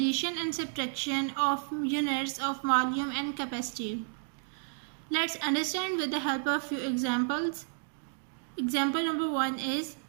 and subtraction of units of volume and capacity. Let's understand with the help of few examples. Example number 1 is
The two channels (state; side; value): silent; left; digital silence